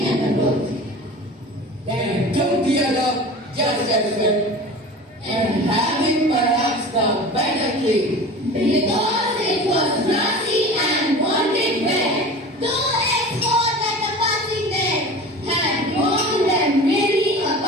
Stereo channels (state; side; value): normal; both; correlation 0.37